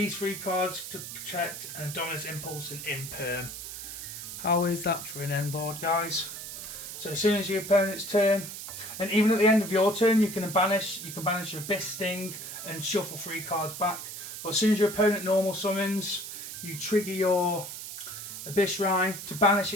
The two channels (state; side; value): noise; right; hiss, 9 dB below the sound